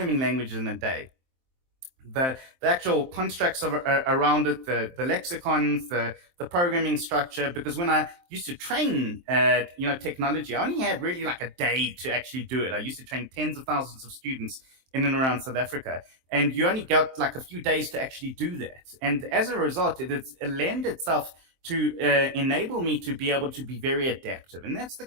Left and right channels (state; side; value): late; left; 23 ms